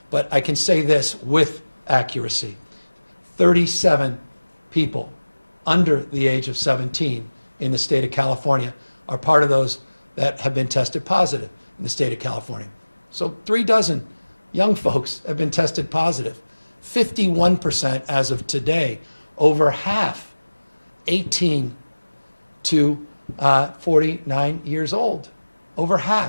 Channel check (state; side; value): inverted; both; correlation -1.00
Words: But I can say this with accuracy. 37 people under the age of 17 in the state of California are part of those that have been tested positive in the state of California. So 36 young folks have been tested positive. 51% as of today, over half 18 to 49 years old. Over